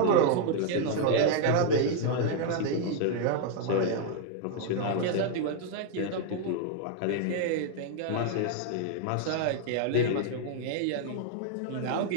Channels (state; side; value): different; both; correlation 0.00